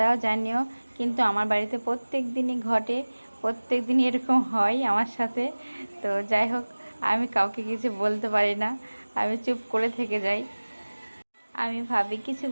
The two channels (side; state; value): both; inverted; correlation -1.00